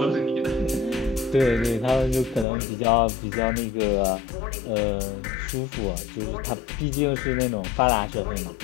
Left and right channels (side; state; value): right; drops out; at 2.5 s